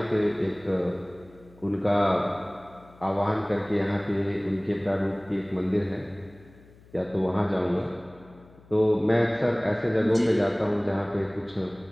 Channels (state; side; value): noise; left; hum, 25 dB below the sound